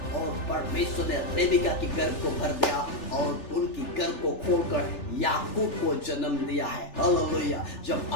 और परमेश्वर ने रेबिका की गर्भ को भर दिया और उनकी गर्भ को खोलकर याकूब को जन्म दिया है। हालेलुया। जब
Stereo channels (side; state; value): right; late; 3.4 ms